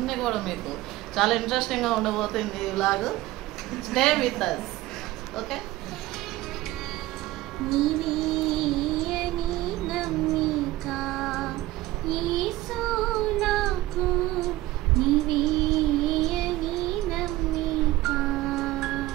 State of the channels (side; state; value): left; quieter; 17.5 dB